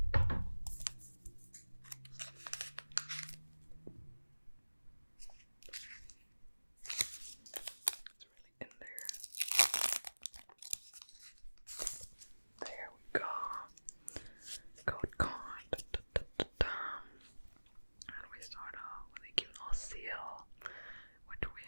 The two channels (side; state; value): both; inverted; correlation -1.00